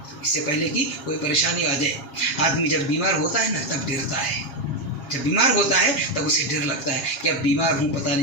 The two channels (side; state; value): right; late; 7.3 ms